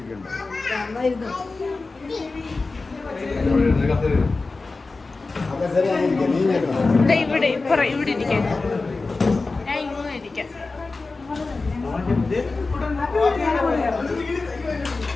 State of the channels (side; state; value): right; quieter; 3.7 dB